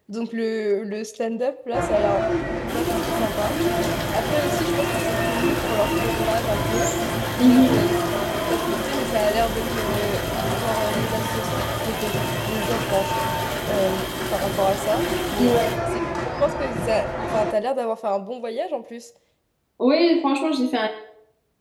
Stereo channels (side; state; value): both; identical; correlation 1.00